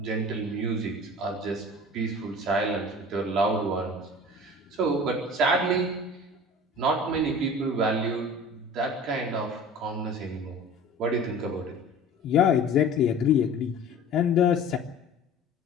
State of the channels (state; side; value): normal; both; correlation 0.41